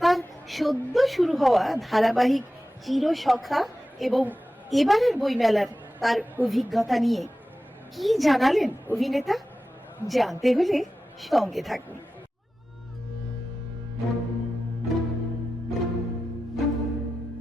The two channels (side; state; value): both; normal; correlation 0.94